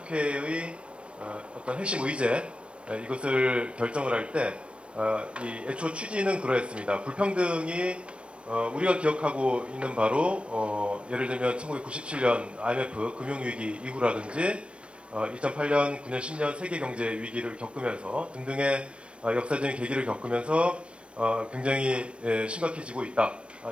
어떤 핵심 의제 이것을 결정을 할 때 이 애초 취지는 그러했습니다. 불평등이 우리가 기억하고 있는 바로 예를 들면 1997년 IMF 금융위기 이후라든지 2008년, 9년, 10년 세계경제 위기를 겪으면서 등등의 역사적인 계기를 겪으면서 굉장히 심각해지고 있다.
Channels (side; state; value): left; late; 0.059 ms